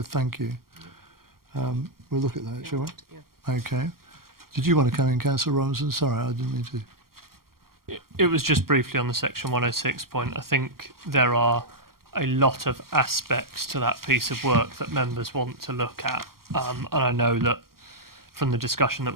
thank you. We'll look at that, shall we? Yeah. Okay. Did you want to come in, Councillor Robinson? Sorry, I didn't mean to. It was just briefly on the section 106 point. I think there are a lot of aspects to that piece of work that members want to look at. And I know that from the discussion that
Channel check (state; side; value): late; left; 0.93 ms